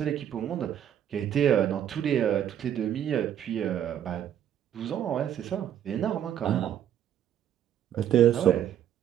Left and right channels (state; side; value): quieter; left; 10.2 dB